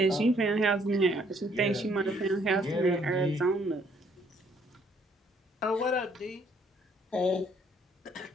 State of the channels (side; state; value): both; normal; correlation 0.65